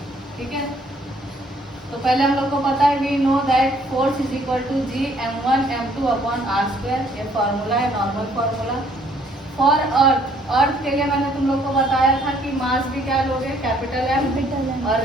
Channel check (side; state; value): both; normal; correlation 0.63